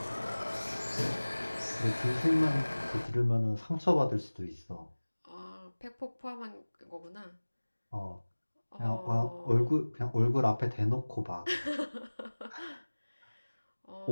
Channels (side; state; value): both; inverted; correlation -1.00